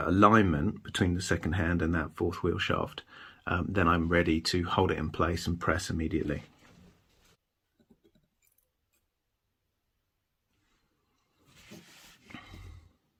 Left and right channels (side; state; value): both; identical; correlation 1.00